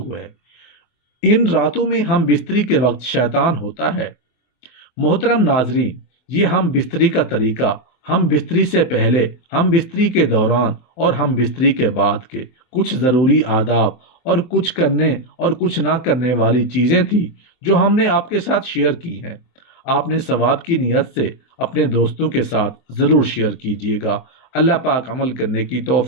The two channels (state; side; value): late; right; 24 ms